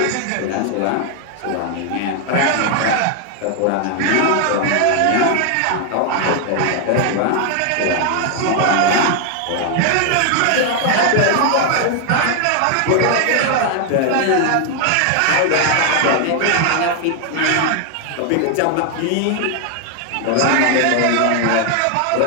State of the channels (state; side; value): different; both; correlation 0.00